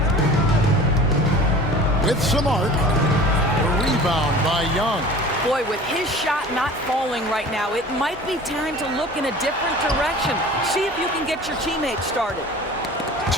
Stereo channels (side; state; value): both; normal; correlation 0.42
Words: With some arc. A rebound by Young. Boy, with his shot not falling right now, it might be time to look in a different direction. See if you can get your teammates started.